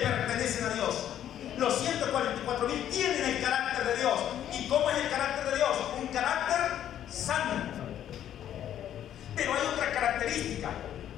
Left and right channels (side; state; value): right; quieter; 10.8 dB